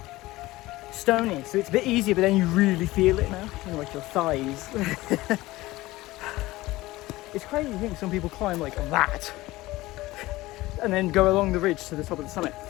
stony, so it's a bit easier, but then you really feel it now in like your thighs. It's crazy to think some people climb like that and then go along the ridge to the top of the summit.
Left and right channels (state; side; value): quieter; right; 18.6 dB